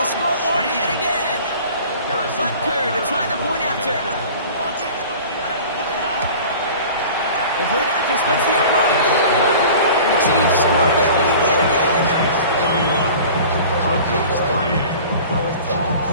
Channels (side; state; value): both; inverted; correlation -0.42